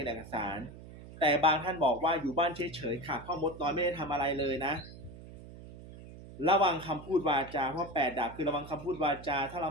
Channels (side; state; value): right; noise; hum, 16 dB below the sound